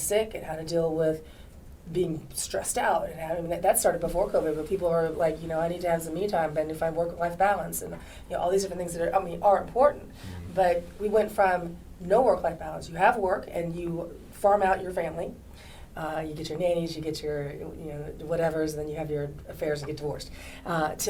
and how to deal with being stressed out. And that started before COVID, but people are like, I need to have some me time and to find work-life balance and all these different things that are important. But we went from no work-life balance. You have work and you farm out your family, You get your nannies, you get your whatevers, and then you have your affairs and get divorced.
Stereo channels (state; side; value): identical; both; correlation 1.00